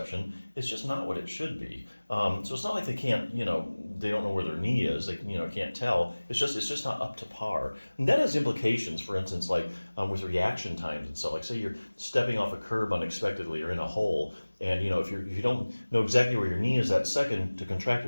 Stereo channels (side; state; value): both; inverted; correlation -1.00